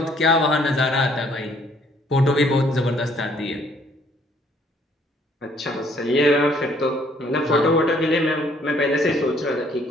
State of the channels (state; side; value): normal; both; correlation 0.63